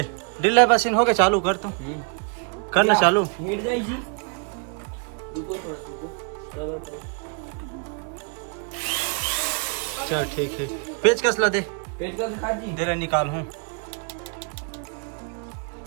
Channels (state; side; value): quieter; left; 37.5 dB